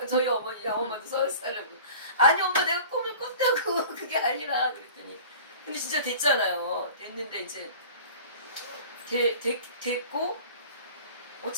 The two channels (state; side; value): inverted; both; correlation -0.42